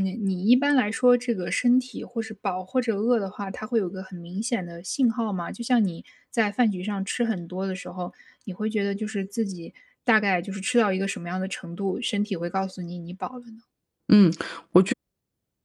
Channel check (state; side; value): identical; both; correlation 1.00